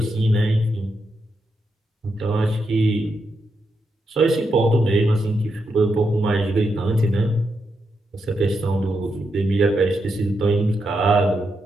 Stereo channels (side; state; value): both; normal; correlation 0.84